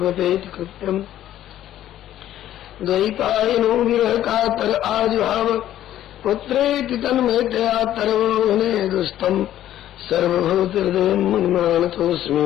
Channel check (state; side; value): quieter; right; 12.4 dB